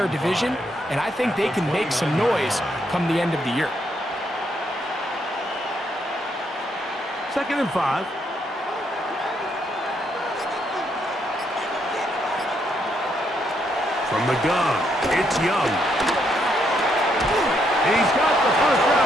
division, and I think they can make some noise come the end of the year. 2nd and 5. From the gun, it's Young. He's got the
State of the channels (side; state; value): both; normal; correlation 0.75